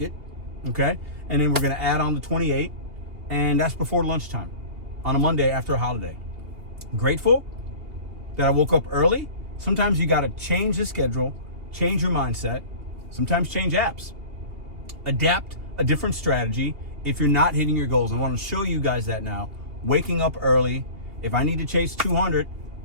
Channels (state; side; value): late; left; 2.8 ms